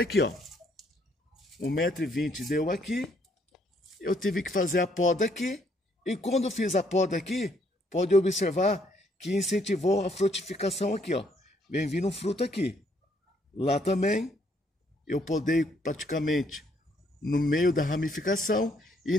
ó. 1,20 m deu aqui. Eu tive que fazer a poda aqui. E quando eu fiz a poda aqui, pode observar que incentivou a frutificação aqui, ó. Vem vindo um fruto aqui. Lá também, eu podei praticamente no meio da ramificação e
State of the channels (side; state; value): both; normal; correlation 0.69